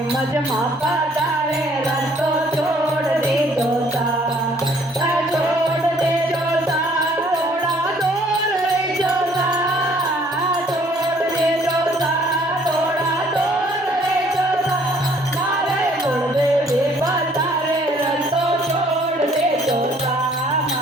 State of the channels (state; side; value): normal; both; correlation 0.60